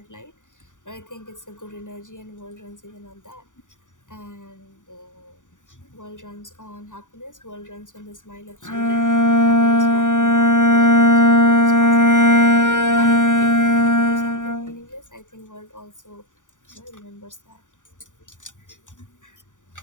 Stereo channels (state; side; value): late; right; 0.87 ms